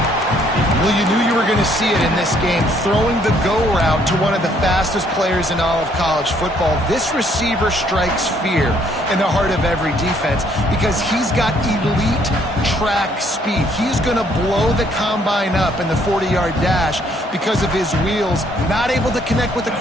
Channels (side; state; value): both; normal; correlation 0.66